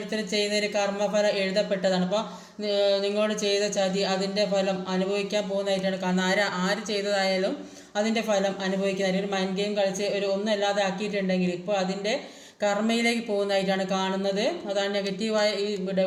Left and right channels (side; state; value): both; identical; correlation 1.00